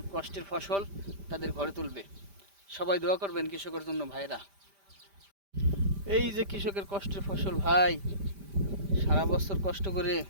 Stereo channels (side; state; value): left; late; 5.1 ms